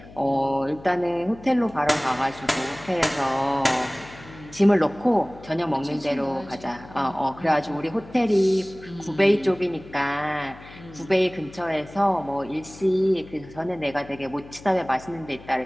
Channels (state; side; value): noise; left; hum, 19 dB below the sound